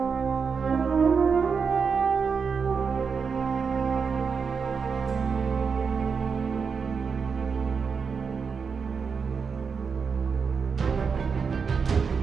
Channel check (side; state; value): left; quieter; 5.7 dB